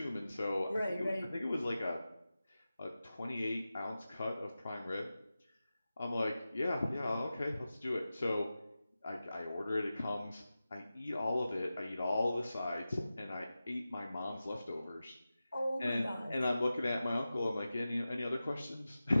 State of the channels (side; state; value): both; inverted; correlation -0.94